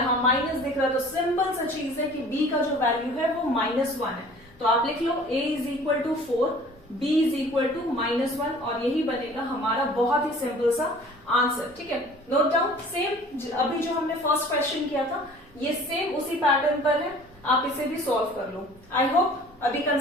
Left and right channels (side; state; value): both; normal; correlation 0.48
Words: माइनस दिख रहा है, तो सिंपल सा चीज है कि b का जो वैल्यू है वो -1 है, तो आप लिख लो a is equal to 4, b is equal to -1, और यही बनेगा हमारा बहुत ही सिंपल सा आंसर। ठीक है, नोट डाउन। सेम अभी जो हमने फर्स्ट क्वेश्चन किया था ये सेम उसी पैटर्न पर है, आप इसे भी सॉल्व कर लो। आई होप अभी